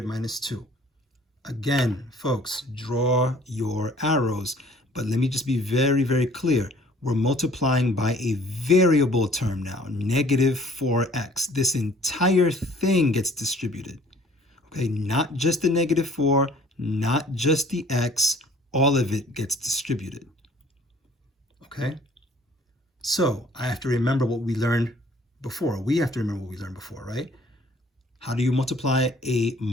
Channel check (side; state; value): both; normal; correlation 0.55